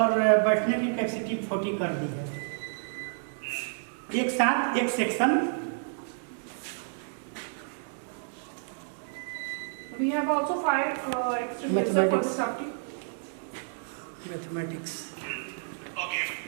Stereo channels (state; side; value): silent; left; 58 dB below the other